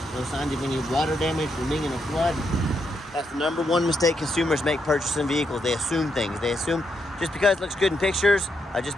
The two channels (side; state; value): both; normal; correlation 0.80